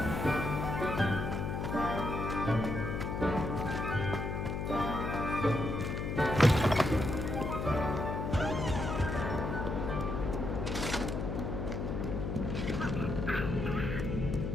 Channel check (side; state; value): left; noise; hum, 2 dB below the sound